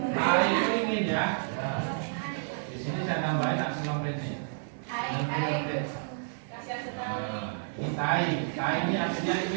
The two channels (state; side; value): silent; left; digital silence